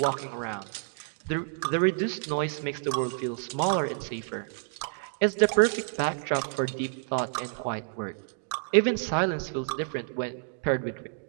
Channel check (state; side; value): silent; left; digital silence